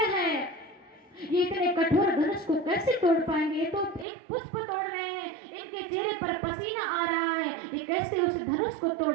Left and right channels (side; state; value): left; drops out; at 4.0 s